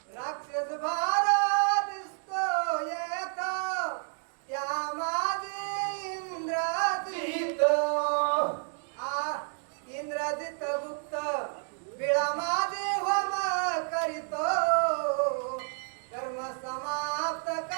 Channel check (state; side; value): silent; left; 58 dB below the other